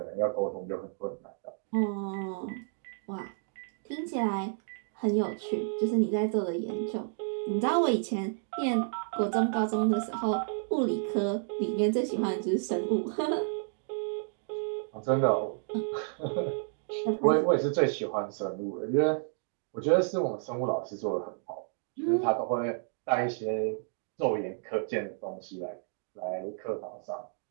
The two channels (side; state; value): left; silent; digital silence